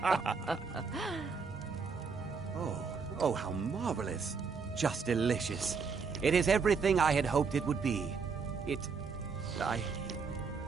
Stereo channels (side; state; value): left; quieter; 5.3 dB